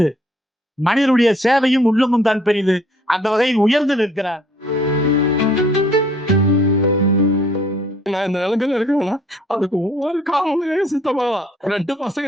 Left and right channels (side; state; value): both; normal; correlation 0.59